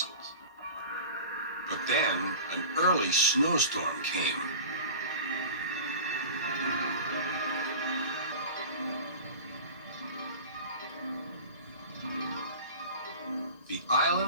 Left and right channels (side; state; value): both; inverted; correlation -0.36